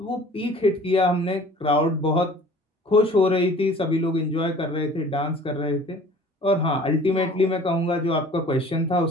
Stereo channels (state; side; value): normal; both; correlation 0.48